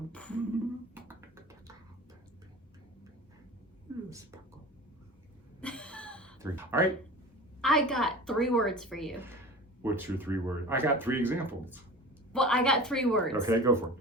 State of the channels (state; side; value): normal; both; correlation 0.36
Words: All right. I got 3 words for you. What's your 3 words? I got 3 examples. Well, I got 3 words. Okay, go for it.